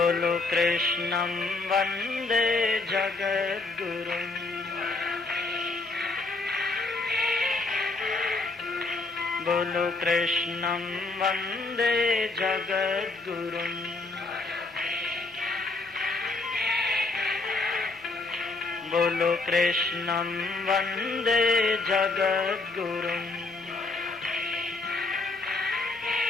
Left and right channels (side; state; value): right; quieter; 3.4 dB